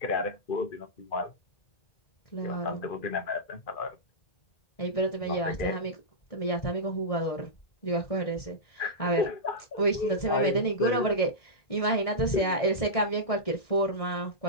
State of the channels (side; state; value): right; late; 1.7 ms